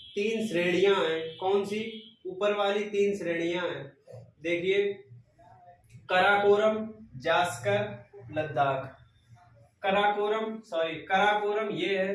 3 श्रेणियां हैं। कौन सी? ऊपर वाली 3 श्रेणियां हैं। देखिए, कराकोरम, जास्कर, लद्दाख। कराकोरम ये है।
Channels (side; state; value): both; identical; correlation 1.00